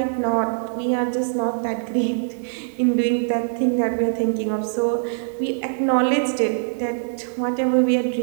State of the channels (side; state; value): left; silent; digital silence